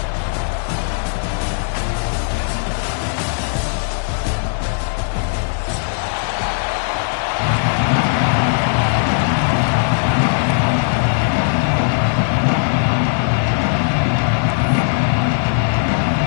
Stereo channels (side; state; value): right; silent; digital silence